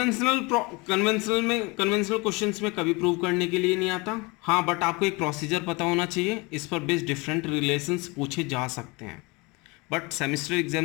क्वेश्चंस में कभी प्रूव करने के लिए नहीं आता, हाँ, बट आपको एक प्रोसीजर पता होना चाहिए, इस पर बेस्ड डिफरेंट रिलेशंस पूछे जा सकते हैं, बट सेमेस्टर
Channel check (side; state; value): right; quieter; 26.6 dB